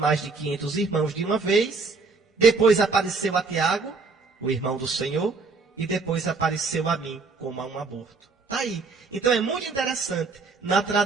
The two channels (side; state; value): left; quieter; 4.2 dB